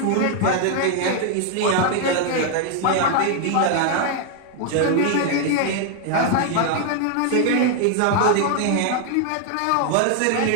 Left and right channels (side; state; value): both; different; correlation 0.00